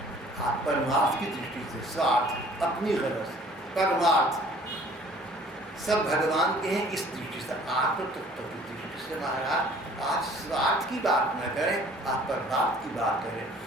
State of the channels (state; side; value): normal; both; correlation 0.53